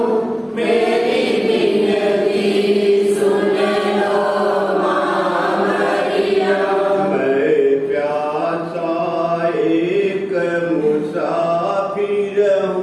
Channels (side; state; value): both; identical; correlation 1.00